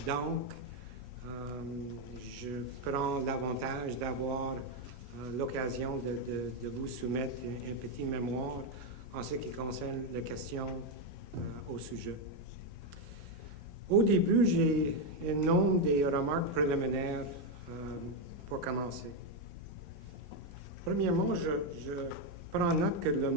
Donc, je prends l'avantage d'avoir l'occasion de vous soumettre un petit mémoire en ce qui concerne les questions au sujet. Au début, j'ai un nombre de remarques préliminaires pour commencer. Premièrement, je prends note que le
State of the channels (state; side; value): normal; both; correlation 0.05